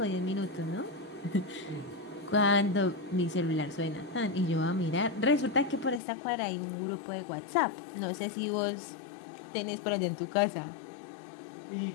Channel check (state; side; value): drops out; right; at 6.0 s